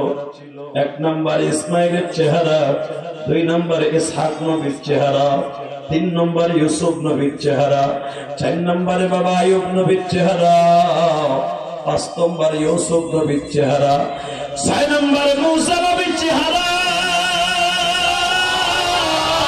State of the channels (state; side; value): identical; both; correlation 1.00